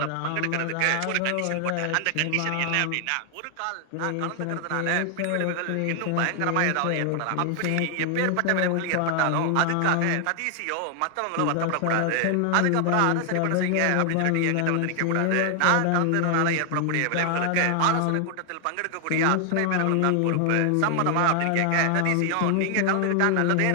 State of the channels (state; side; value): different; both; correlation 0.00